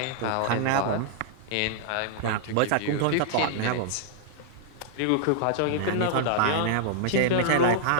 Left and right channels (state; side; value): different; both; correlation -0.01